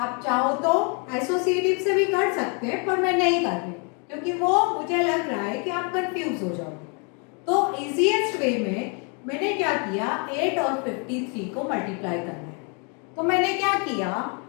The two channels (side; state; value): right; quieter; 36.2 dB